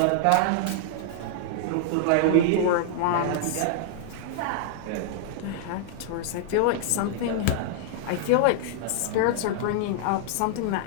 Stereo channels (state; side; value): different; both; correlation -0.01